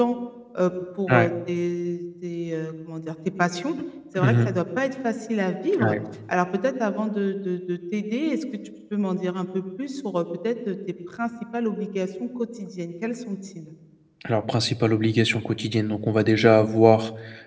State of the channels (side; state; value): both; identical; correlation 1.00